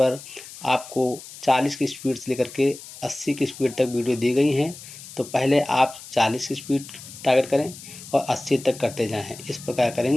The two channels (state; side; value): noise; left; hiss, 15 dB below the sound